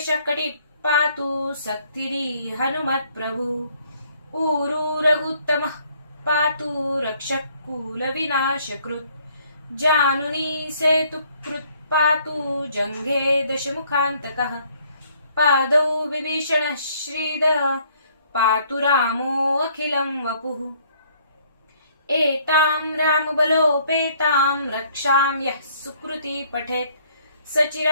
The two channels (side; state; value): both; inverted; correlation -0.63